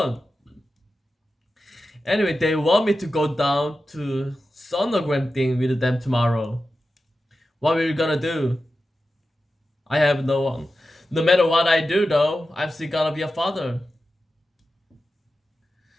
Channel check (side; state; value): both; normal; correlation 0.92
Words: Anyway, they want me to go down to sonogram thing with them tomorrow. What are we gonna do? I have no one. No matter what I do though, I'm still gonna be a father.